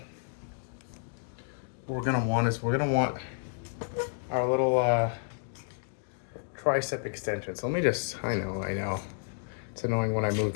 what we're gonna want is our little tricep extension. So let me just, I know. It's annoying when I move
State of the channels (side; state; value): right; silent; digital silence